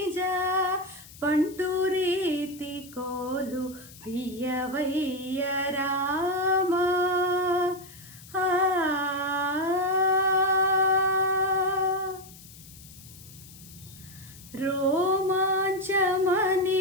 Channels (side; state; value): left; noise; hiss, 20 dB below the sound